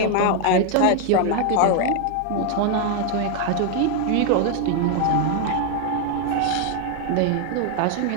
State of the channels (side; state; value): both; different; correlation 0.01